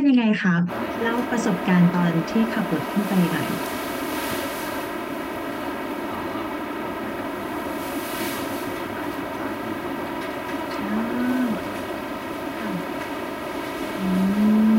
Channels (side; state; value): both; identical; correlation 1.00